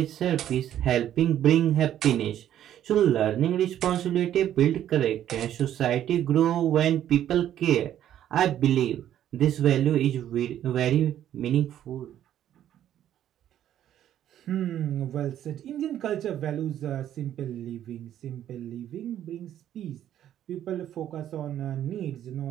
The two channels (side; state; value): left; quieter; 11.2 dB